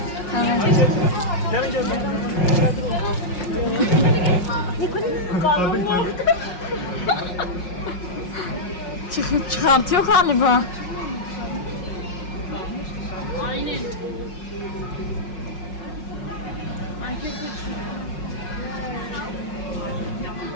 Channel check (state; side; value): late; right; 5.5 ms